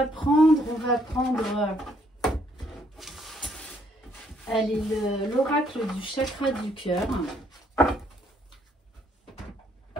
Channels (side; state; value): both; normal; correlation 0.68